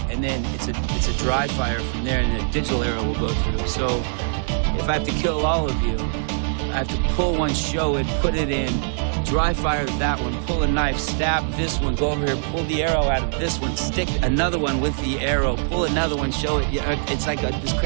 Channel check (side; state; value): left; silent; digital silence